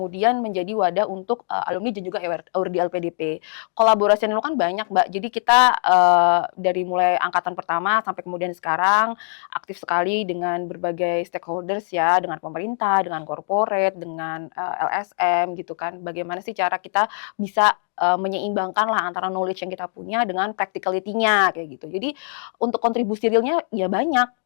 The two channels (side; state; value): right; silent; digital silence